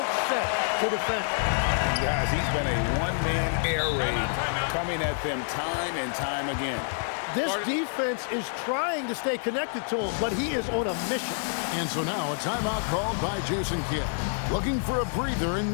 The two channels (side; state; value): right; silent; digital silence